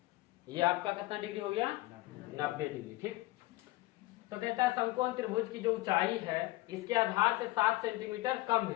ये आपका कितना डिग्री हो गया, 90 डिग्री। ठीक, तो कहता है समकोण त्रिभुज की जो ऊंचाई है इसके आधार से 7 सेंटीमीटर कम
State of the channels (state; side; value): quieter; right; 19.3 dB